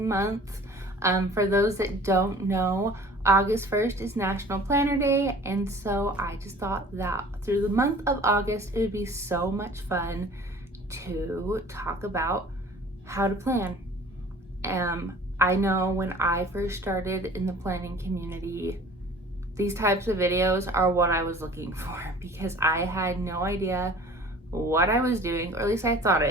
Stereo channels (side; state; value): both; normal; correlation 0.47